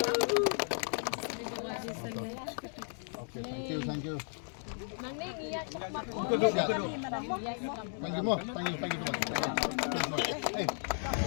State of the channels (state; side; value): silent; right; 55 dB below the other